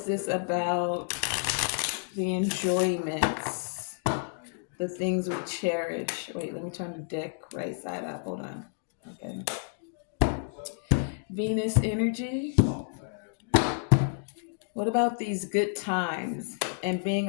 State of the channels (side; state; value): right; silent; digital silence